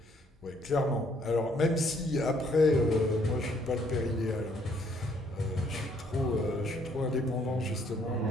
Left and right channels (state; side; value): normal; both; correlation 0.66